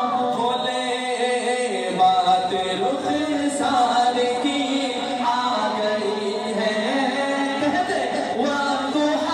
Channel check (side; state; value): both; identical; correlation 1.00